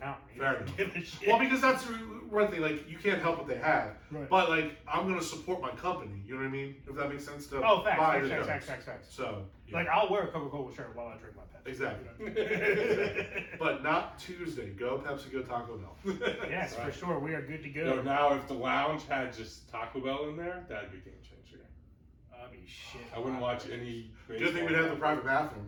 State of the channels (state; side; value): identical; both; correlation 1.00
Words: Fair enough. Well, because that's one thing. Like you can't help what they have, right. But like I'm gonna support my company. You know what I mean? If that makes sense to facts. So yeah. Like I'll wear a Coca-Cola shirt while I drink my Pepsi. Exactly. But not Tuesday. Go Pepsi. Go Taco Bell. Yes, right. For sure. We are good to go. So now, if the lounge had just Taco Bell in there, that'd be a game changer. I mean, shit. I wouldn't watch any. Good thing we'd have the private